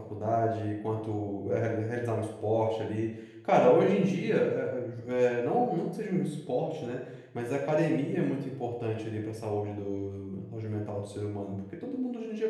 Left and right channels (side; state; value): both; identical; correlation 1.00